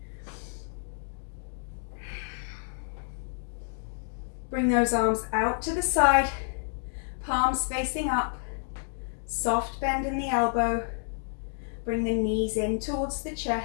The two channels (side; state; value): right; silent; digital silence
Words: Bring those arms out to the side, palms facing up, soft bend in the elbow. Bring the knees in towards the